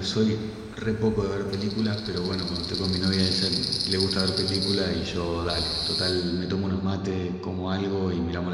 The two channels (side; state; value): both; identical; correlation 1.00